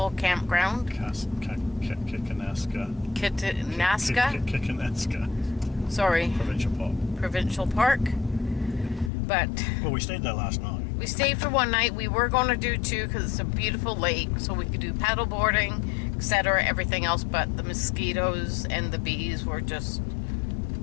campground. Kinaskan. Sorry. Provincial Park. But well, we stayed there last night. We stayed for 1 night. We were going to do 2 because it's a beautiful lake, so we could do paddle boarding, etc., everything else, but the mosquitoes and the bees were just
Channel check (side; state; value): right; drops out; at 9.1 s